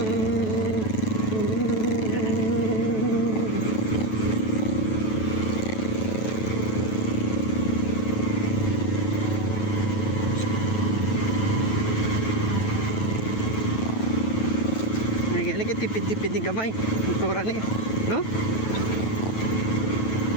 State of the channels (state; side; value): late; right; 9.2 ms